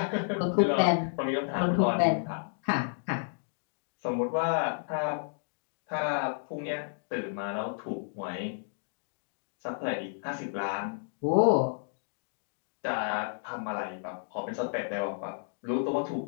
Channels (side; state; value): right; silent; digital silence